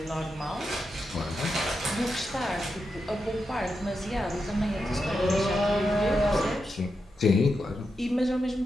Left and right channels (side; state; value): both; normal; correlation 0.87